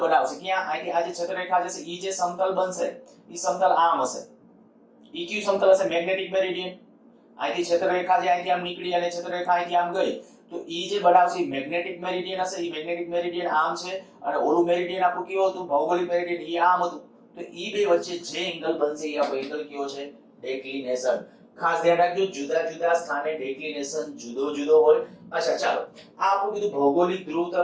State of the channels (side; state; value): both; identical; correlation 1.00